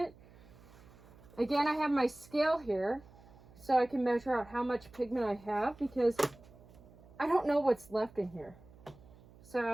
Again, I have my scale here so I can measure out how much pigment I have because I don't know what's left in here.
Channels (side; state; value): right; noise; hum, 23 dB below the sound